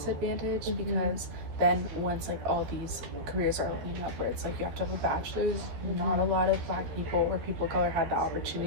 because then once like all these careers are opening up where it's like you have to have a bachelor's, not a lot of Black people or people of color had the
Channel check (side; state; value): left; late; 12 ms